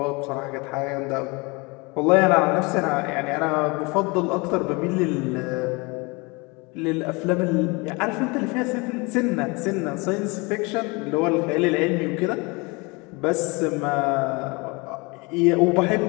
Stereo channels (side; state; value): right; quieter; 27.5 dB